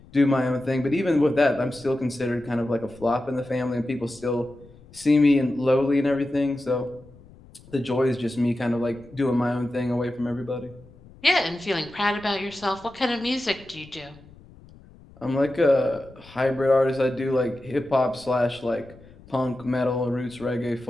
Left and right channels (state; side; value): noise; left; rumble, 23 dB below the sound